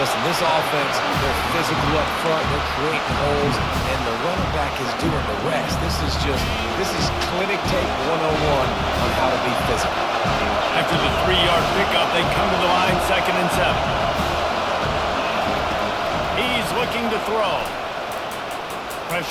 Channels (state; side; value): identical; both; correlation 1.00